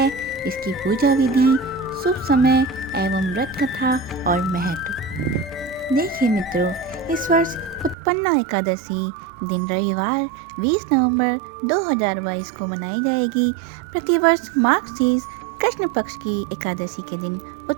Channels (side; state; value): left; drops out; at 8.0 s